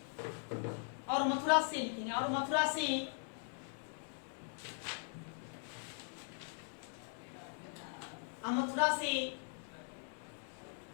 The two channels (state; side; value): silent; right; 51 dB below the other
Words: और मथुरा से लिखेंगे, और मथुरा से